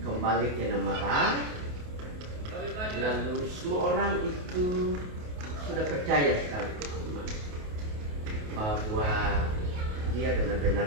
kembali ke Namara, lalu semua orang itu sudah percaya sekali bahwa dia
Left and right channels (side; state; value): left; late; 28 ms